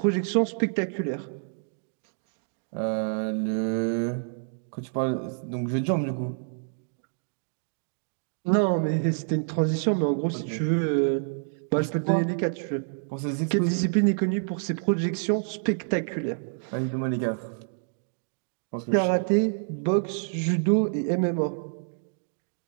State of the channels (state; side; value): silent; left; digital silence